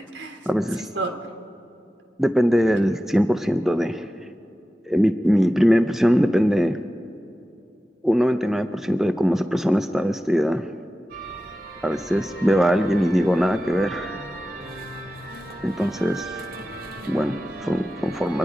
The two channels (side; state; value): both; normal; correlation 0.94